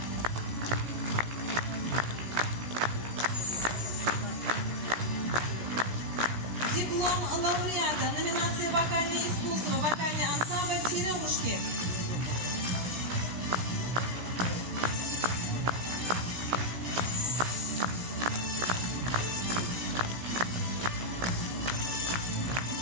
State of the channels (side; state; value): left; late; 17 ms